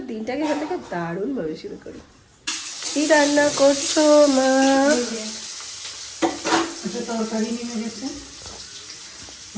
দিনটাকে এখান থেকে দারুণভাবে শুরু করি। কি রান্না করছো মা? তরকারি নেমে গেছে,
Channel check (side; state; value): both; identical; correlation 1.00